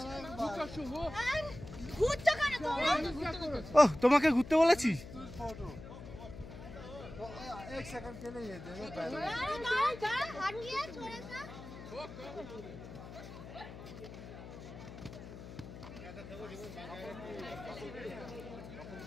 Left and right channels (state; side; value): noise; left; hum, 13 dB below the sound